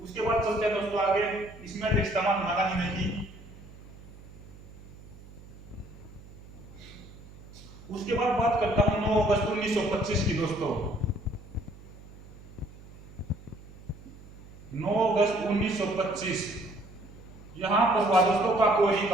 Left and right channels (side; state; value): right; noise; hum, 19 dB below the sound